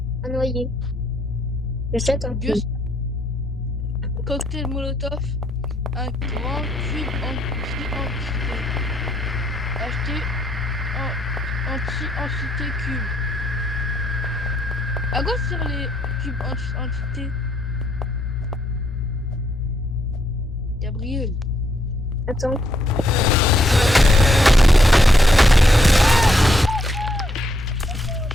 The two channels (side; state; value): both; normal; correlation 0.74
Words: Un noyer. J'achète un Gus. Cocktail Molotov. Un grand cube anti-entité. Acheter anti-entité cube. À quoi servent les cubes anti-entité? Gabriel. Attends.